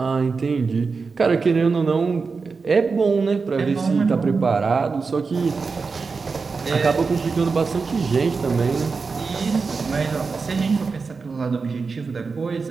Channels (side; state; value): left; quieter; 4.7 dB